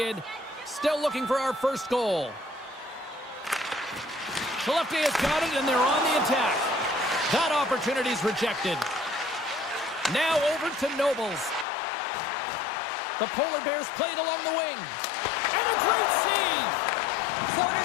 Still looking for our first goal. Skellefteå has got it, and they're on the attack. That opportunity's rejected. Now over to Nobles. The Polar Bears played along the wing. And a great save!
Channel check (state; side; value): drops out; right; at 11.7 s